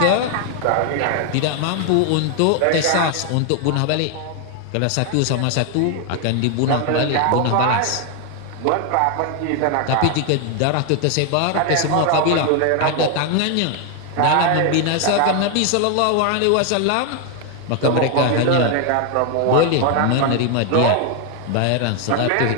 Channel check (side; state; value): both; different; correlation 0.01